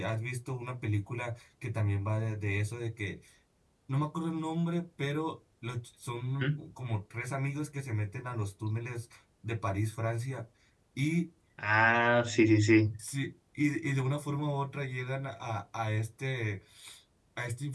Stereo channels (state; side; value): identical; both; correlation 1.00